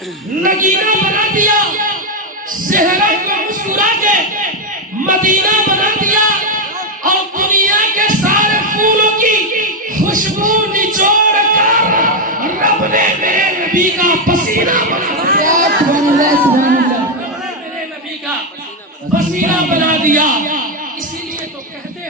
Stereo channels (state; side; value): normal; both; correlation 0.04